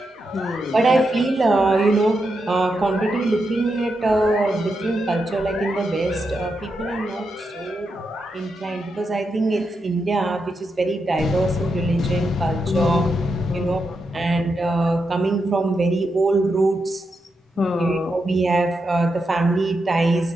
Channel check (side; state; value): both; normal; correlation 0.85